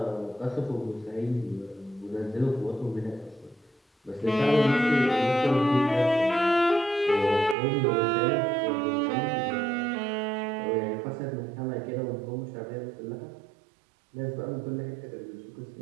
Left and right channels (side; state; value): left; drops out; at 7.6 s